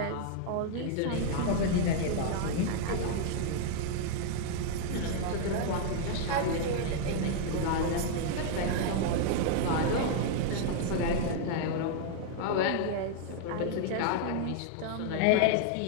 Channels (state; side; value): different; both; correlation 0.00